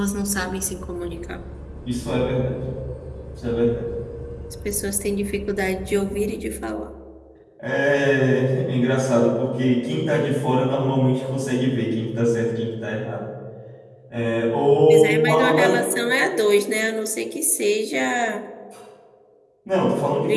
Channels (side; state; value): both; identical; correlation 1.00